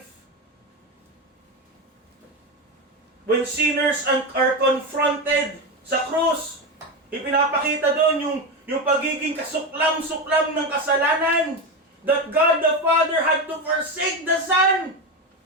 When sinners are confronted sa krus, ipinapakita doon yung pagiging kasuklam-suklam ng kasalanan, that God the Father had to forsake the Son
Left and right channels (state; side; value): normal; both; correlation 0.16